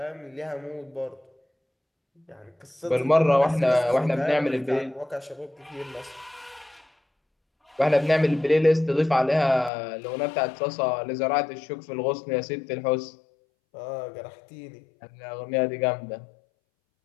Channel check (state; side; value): drops out; right; at 9.7 s